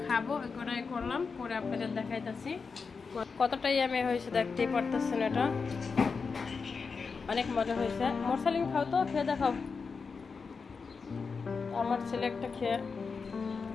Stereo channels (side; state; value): right; quieter; 5.0 dB